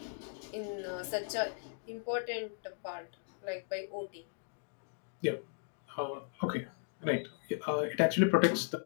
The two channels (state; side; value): silent; right; digital silence